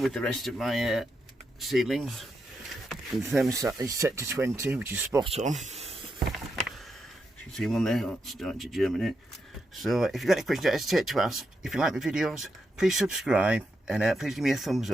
the rest of my seedlings. The thermostat is set to 20, which is spot on. You can see one there, it's starting to germinate. So if you've got any questions, don't hesitate to ask. If you like my videos, please subscribe and please give me a thumbs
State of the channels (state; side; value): normal; both; correlation 0.84